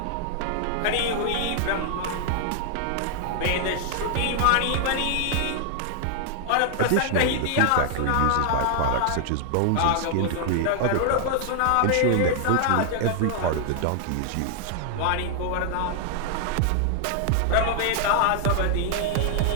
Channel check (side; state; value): both; different; correlation 0.00